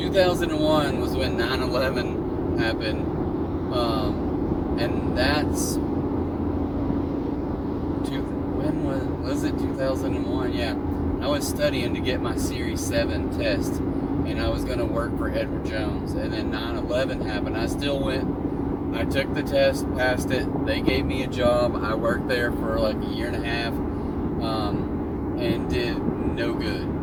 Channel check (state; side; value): identical; both; correlation 1.00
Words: was when 9/11 happened, and that's when was it 2001? Yeah, I was studying to get my Series 7 test, and I was going to work for Edward Jones. And then 9/11 happened. I still went. I took the test, passed it. They gave me a job. I worked there for like a year and a half, and did no good.